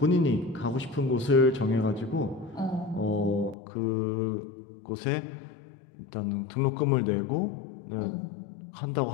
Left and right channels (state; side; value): drops out; right; at 3.6 s